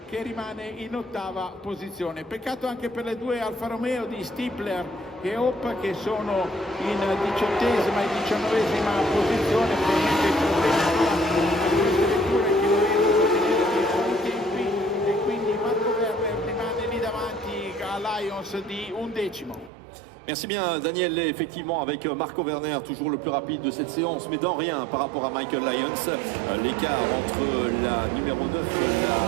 che rimane in ottava posizione. Peccato anche per le due Alfa Romeo di Stifler e Hope che sono in 18ª e 19ª posizione. Probabilmente il problema di queste vetture che non riescono a tenere i buoni tempi e quindi Marco Werner rimane lì davanti a Lions di 11º. Merci bien Daniel, effectivement avec Marco Werner toujours le plus rapide de cette séance mais dans rien par rapport à Michael Lyons. L'écart entre la numéro 9 et la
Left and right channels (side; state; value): left; drops out; at 19.7 s